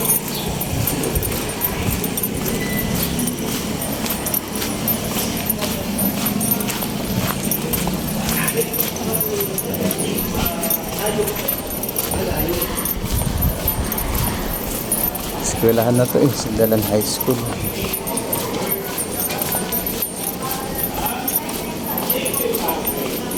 Eskwelahan na to eh, Sindalan High School.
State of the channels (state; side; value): identical; both; correlation 1.00